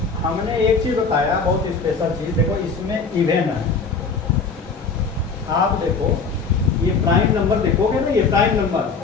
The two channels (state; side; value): quieter; right; 4.8 dB